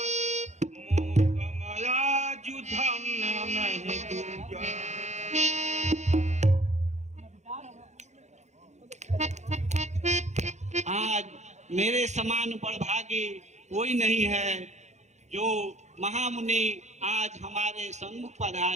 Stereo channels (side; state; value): left; late; 0.33 ms